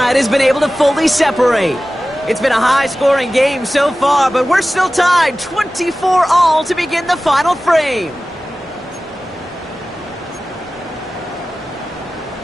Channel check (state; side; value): normal; both; correlation 0.96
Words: has been able to fully separate. It's been a high-scoring game so far, but we're still tied 24-all to begin the final frame.